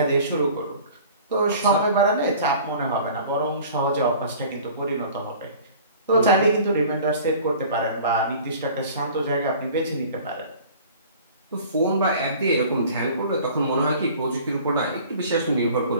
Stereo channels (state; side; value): inverted; both; correlation -0.46